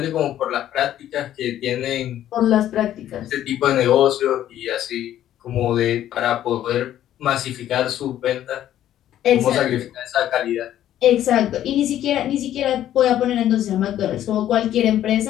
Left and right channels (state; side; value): quieter; right; 11.9 dB